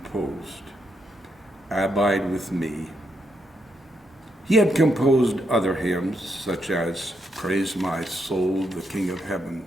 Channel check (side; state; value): both; normal; correlation 0.80